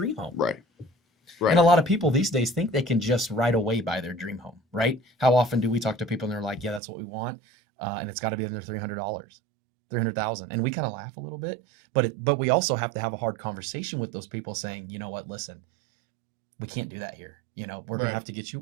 home. Right. And a lot of people these days think they can just right away buy their dream home, right? How often do we talk to people and they're like, yeah, that's what we want. And it's got to be under $300, $300,000. And we kind of laugh a little bit, but we also have to have a hard conversation with those people saying, you know what, listen, we can't do that here. We're going to Right. have to get you,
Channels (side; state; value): left; drops out; at 6.8 s